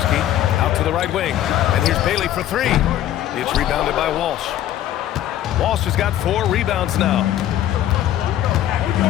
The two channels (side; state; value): right; quieter; 12.3 dB